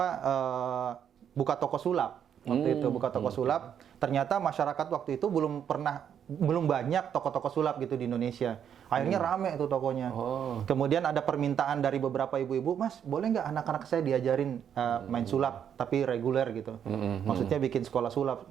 buka toko sulap. Waktu itu buka toko sulap. Ternyata masyarakat waktu itu belum banyak toko-toko sulap gitu di Indonesia. Akhirnya rame itu tokonya. Kemudian ada permintaan dari beberapa ibu-ibu, Mas, boleh nggak anak-anak saya diajarin main sulap, tapi reguler gitu. Maksudnya bikin sekolah sulap.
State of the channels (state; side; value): quieter; left; 8.7 dB